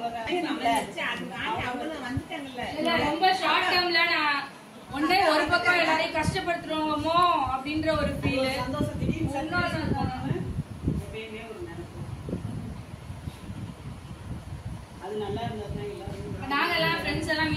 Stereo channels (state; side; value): identical; both; correlation 1.00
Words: வந்துட்டாங்கல்ல. ரொம்ப ஷார்ட் டேர்ம்ல நான் ஒன்றே ஒரு பக்கம் எல்லாரையும் கஷ்டப்படுத்துறோமோ அப்படின்ற ஒரு ஃபீல் சந்தோஷம் திடீர்னு எப்பயுமே ஒரு நினைப்பு அது நல்லா இருந்ததுன்னா எல்லாரும் நாங்கெல்லாம் ஃப்ரெண்ட்ஸ் எல்லாம்